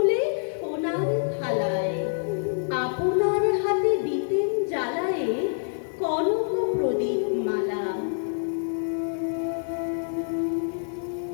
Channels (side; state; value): right; silent; digital silence